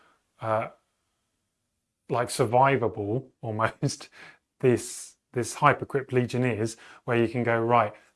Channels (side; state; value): both; identical; correlation 1.00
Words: like survivable almost this Hypercrypt Legion is, where you can go, right,